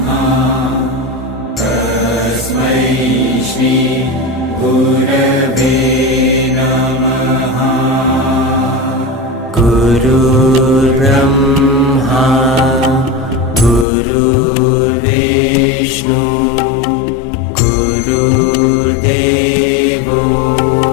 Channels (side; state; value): right; drops out; at 13.9 s